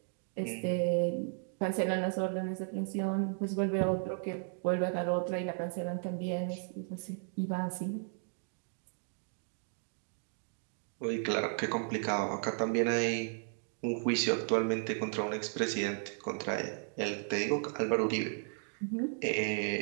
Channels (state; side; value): silent; left; 55 dB below the other